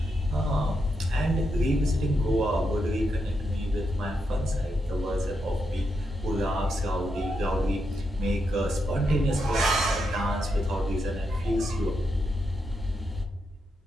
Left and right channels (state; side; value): normal; both; correlation 0.83